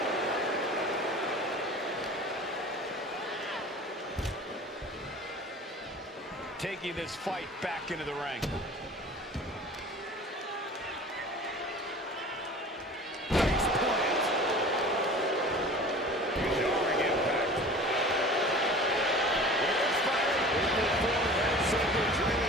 Taking this fight back into the ring. Jarring impact.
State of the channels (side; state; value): both; normal; correlation 0.41